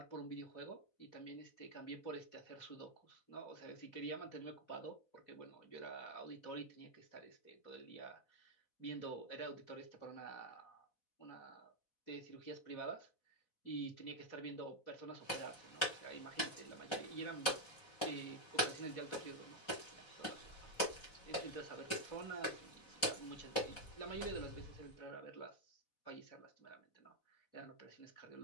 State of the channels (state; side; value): late; right; 4.1 ms